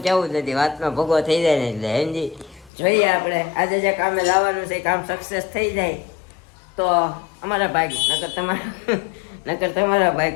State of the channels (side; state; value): right; drops out; at 2.7 s